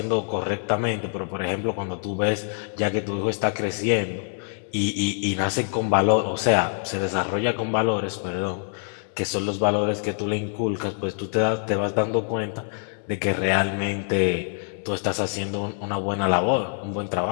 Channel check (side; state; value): right; silent; 62 dB below the other